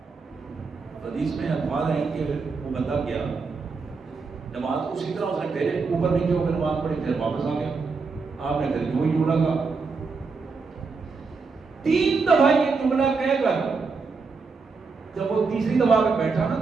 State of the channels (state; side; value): quieter; left; 4.6 dB